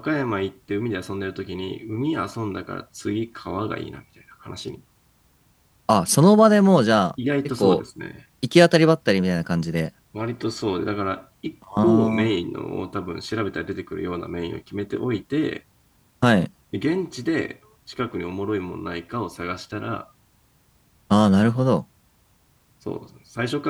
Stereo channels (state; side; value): identical; both; correlation 1.00